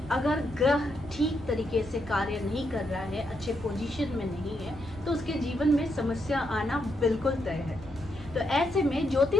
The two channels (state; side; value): normal; both; correlation 0.80